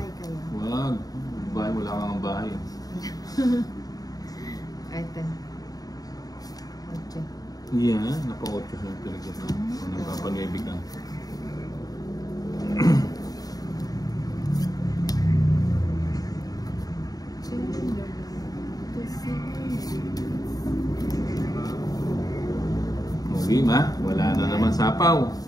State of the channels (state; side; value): late; right; 0.18 ms